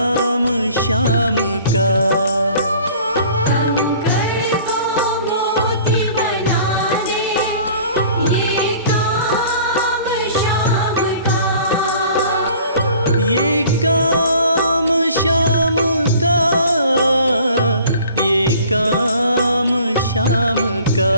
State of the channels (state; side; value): inverted; both; correlation -0.50